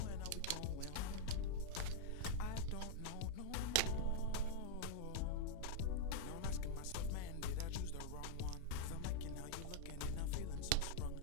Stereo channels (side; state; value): both; different; correlation -0.01